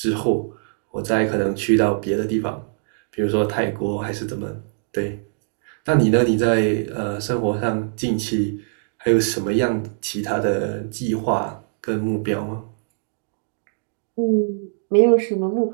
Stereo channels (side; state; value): left; silent; digital silence